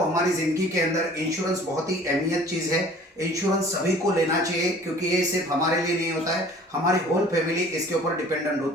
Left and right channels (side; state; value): both; normal; correlation 0.49